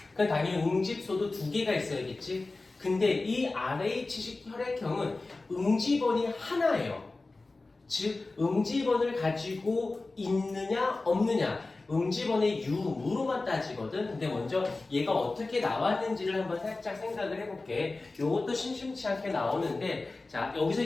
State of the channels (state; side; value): quieter; right; 3.4 dB